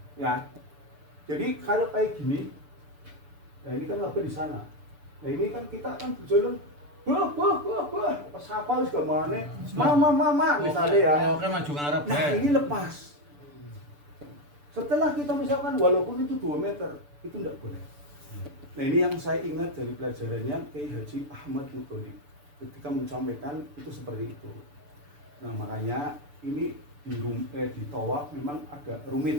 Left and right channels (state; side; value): late; left; 6.9 ms